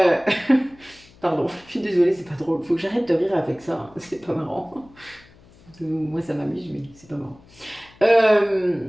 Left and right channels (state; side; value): noise; left; hum, 26 dB below the sound